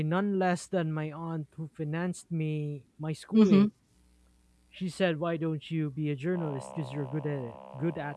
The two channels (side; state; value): both; identical; correlation 1.00